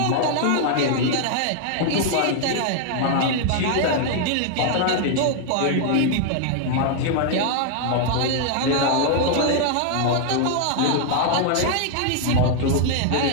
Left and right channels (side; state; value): both; different; correlation 0.00